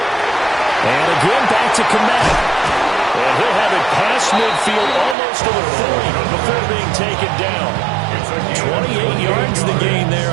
And again, back to Kmet. And he'll have it past midfield almost to the 40 before being taken down. 28 yards the gain there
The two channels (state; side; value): drops out; left; at 5.2 s